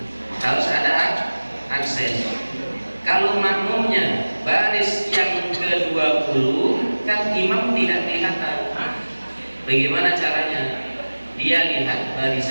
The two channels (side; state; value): both; inverted; correlation -1.00